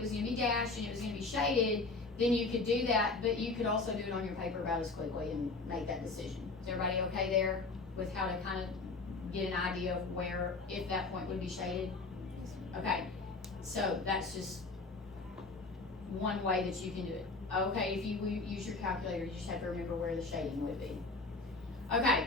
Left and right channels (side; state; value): right; quieter; 3.7 dB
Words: was going to be dashed and it was going to be shaded, then you could do that, but you could also do it on your paper about as quickly and make that decision. Is everybody okay there with how to kind of get an idea of where, if that point would be shaded? Okay, so that's just one way that you can do it. Okay, if you use your calculator, you just have to remember where the shading would be. Okay,